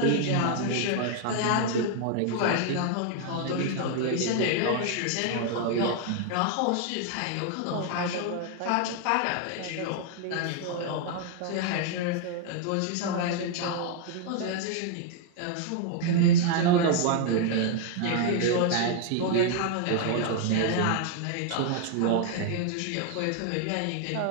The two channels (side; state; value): both; different; correlation 0.00